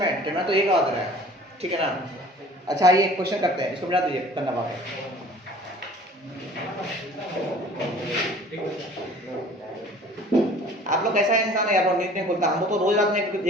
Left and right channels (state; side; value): normal; both; correlation 0.48